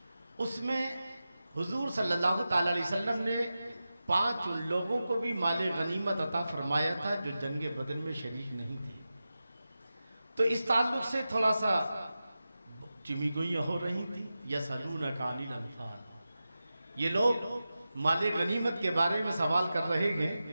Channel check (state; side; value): inverted; both; correlation -0.93